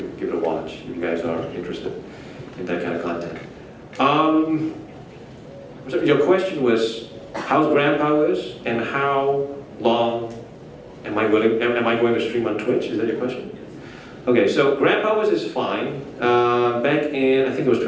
give it a watch if you guys are interested in that kind of content. So your question was, how's GrandPowers and how long am I going to stream on Twitch? Is that your question? Okay, so GrandPowers is fine. Back in, I think it was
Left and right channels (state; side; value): identical; both; correlation 1.00